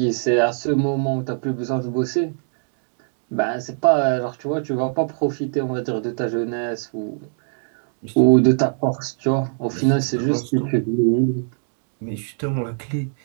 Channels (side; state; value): left; silent; 62 dB below the other